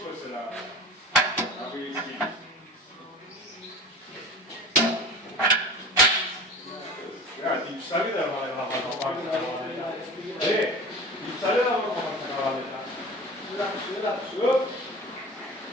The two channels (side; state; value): both; normal; correlation 0.36